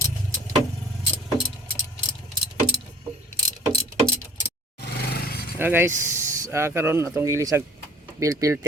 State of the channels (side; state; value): both; normal; correlation 0.51